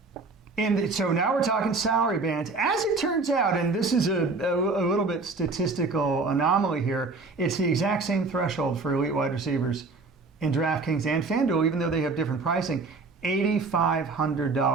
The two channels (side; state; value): left; quieter; 3.8 dB